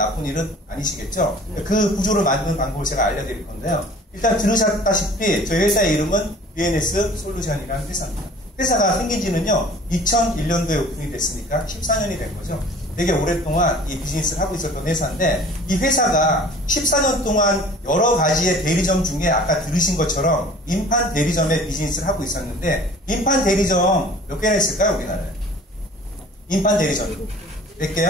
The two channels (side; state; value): both; normal; correlation 0.47